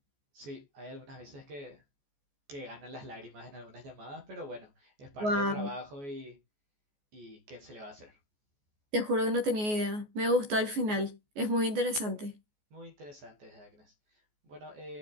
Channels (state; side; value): late; left; 14 ms